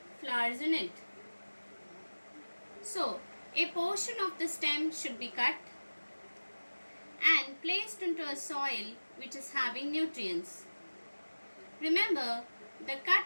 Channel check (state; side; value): inverted; both; correlation -1.00